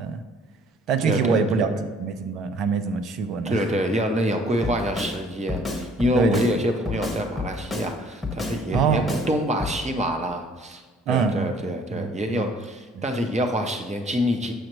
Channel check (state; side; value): normal; both; correlation 0.58